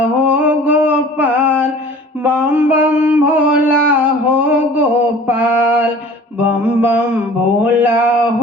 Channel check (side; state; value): both; normal; correlation 0.46